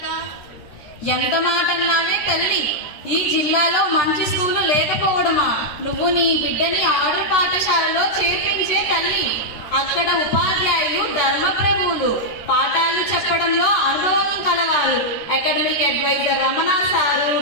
ఎంత మాట అన్నావే తల్లి, ఈ జిల్లాలో మంచి స్కూలు లేకపోవడమా? నువ్వు నీ బిడ్డని ఆర్డర్ పాఠశాలలో చేర్పించే తల్లి. అక్కడ ఉపాధ్యాయులు ధర్మప్రభువులు, పాఠాలు చెప్పడంలో అనుభవం కలవారు. Academic adviser Ramana sir,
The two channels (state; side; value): late; right; 13 ms